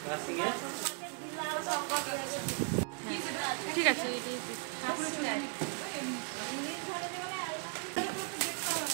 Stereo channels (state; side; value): quieter; left; 37.4 dB